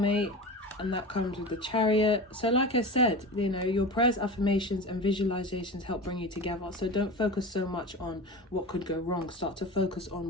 and that comes with the Chariot. So like I said, you know, your prayers, affirmations and visualizations help bring you together. So don't focus so much on what could go wrong. Start to focus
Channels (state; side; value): normal; both; correlation 0.30